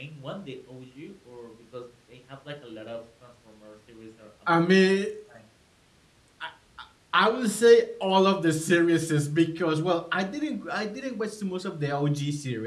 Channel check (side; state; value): both; identical; correlation 1.00